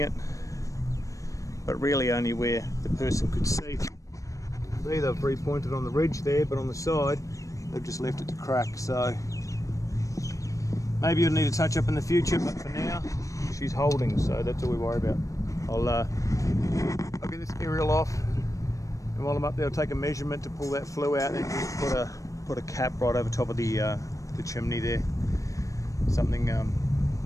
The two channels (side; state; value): right; late; 0.16 ms